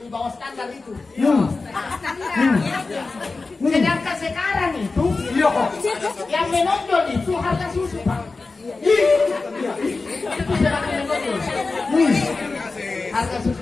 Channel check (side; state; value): right; quieter; 3.8 dB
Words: bawah standar itu. Sedangkan sekarang itu yang menonjol itu harga susu, Pak. Itu semakin menonjol. Harga